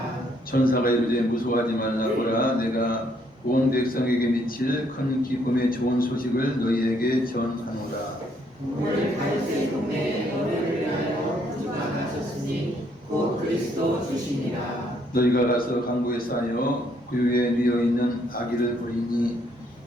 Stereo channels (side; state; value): both; normal; correlation 0.69